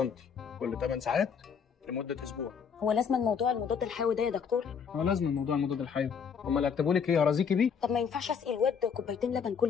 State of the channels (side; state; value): right; quieter; 6.7 dB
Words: كل 8 ساعات لمده اسبوع. هو لازم الموضوع المضاد الحيوي ده يا دكتور؟ هو لازم موضوع المضاد الحيوي. هم اللي هيكتبوا لك ايه؟ هرازيكي بيه؟ طب ما ينفعش اسقي الواد كوبايتين لبن